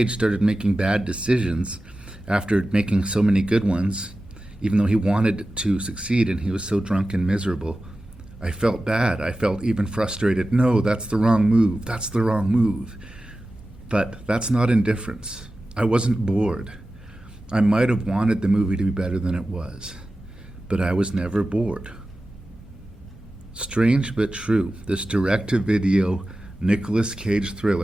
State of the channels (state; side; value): normal; both; correlation 0.94